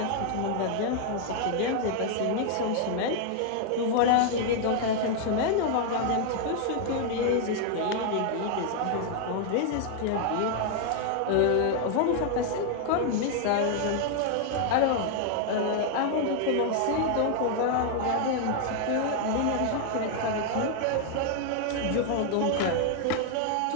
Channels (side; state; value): both; different; correlation 0.00